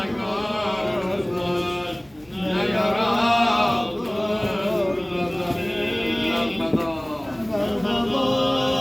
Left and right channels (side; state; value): left; noise; hum, 29 dB below the sound